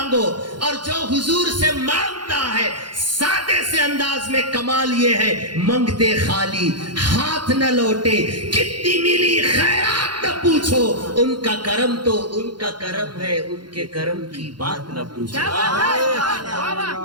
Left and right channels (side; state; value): left; late; 0.71 ms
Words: اور جو حضور سے مانگتا ہے سادے سے انداز میں کمال یہ ہے منگتے خالی ہاتھ نہ لوٹے کتنی ملی خیرات نہ پوچھو ان کا کرم تو ان کا کرم ہے ان کے کرم کی بات نہ پوچھو